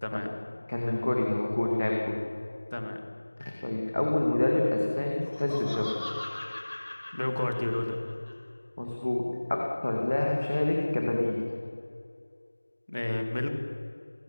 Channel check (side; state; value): both; inverted; correlation -1.00